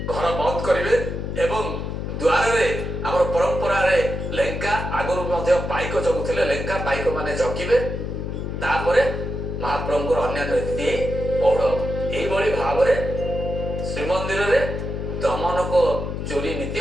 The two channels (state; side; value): noise; left; hum, 4 dB below the sound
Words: ଘର ବନ୍ଦ କରିବେ ଏବଂ ଦ୍ୱାରରେ ଆମର ପରମ୍ପରାରେ ଲେଙ୍କା, ଆଗରୁ ମଧ୍ୟ ପାଇକ ଜଗୁଥିଲେ, ଲେଙ୍କା ପାଇକ ମାନେ ଜଗିବେ। ତାପରେ ମହାପ୍ରଭୁଙ୍କର ଅନ୍ୟାନ୍ୟ ନୀତି ପୌଢ଼। ଏଇଭଳି ଭାବରେ ଶ୍ରୀମନ୍ଦିରରେ ଦମନକ ଚୋରି ନୀତି